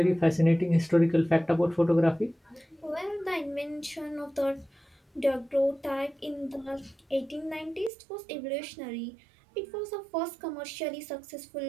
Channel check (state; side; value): drops out; left; at 7.9 s